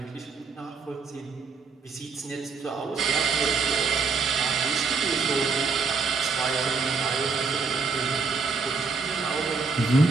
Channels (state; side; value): quieter; left; 4.8 dB